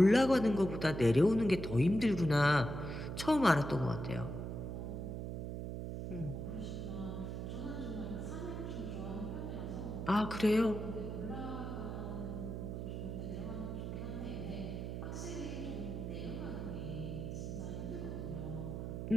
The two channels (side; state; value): right; noise; hum, 5 dB below the sound